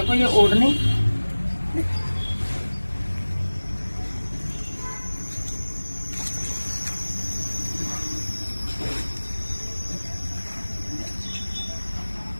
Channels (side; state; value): both; inverted; correlation -1.00